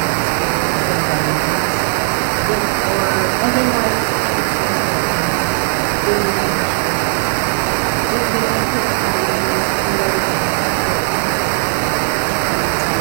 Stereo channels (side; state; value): left; silent; digital silence